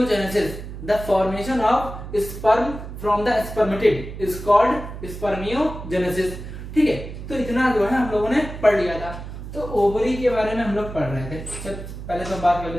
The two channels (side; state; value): right; noise; hum, 10 dB below the sound